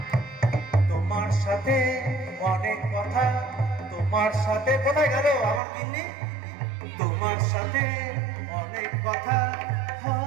তোমার সাথে অনেক কথা, তোমার সাথে কোথায় গেল আমার কিন্নি? তোমার সাথে অনেক কথা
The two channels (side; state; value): left; drops out; at 5.6 s